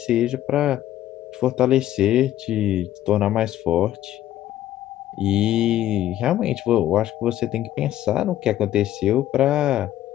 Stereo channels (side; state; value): right; quieter; 12.9 dB